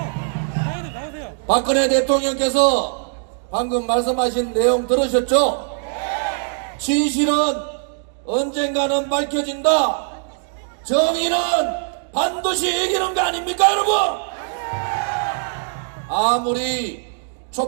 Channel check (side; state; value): left; silent; digital silence